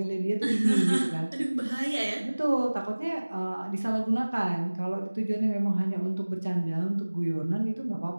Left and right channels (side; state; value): both; inverted; correlation -1.00